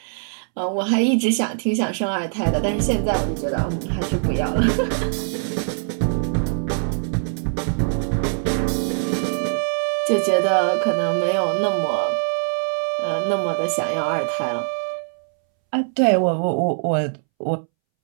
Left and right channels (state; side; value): silent; left; 64 dB below the other